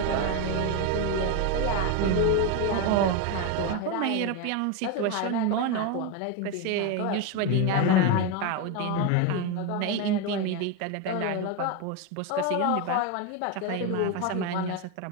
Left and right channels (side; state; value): both; different; correlation 0.03